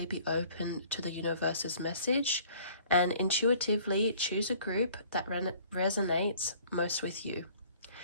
be open to the universe's message, and intuitively choose a group that resonates most with you.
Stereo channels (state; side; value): inverted; both; correlation -0.55